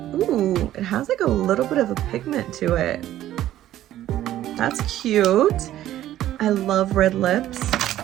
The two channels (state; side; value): quieter; left; 13.2 dB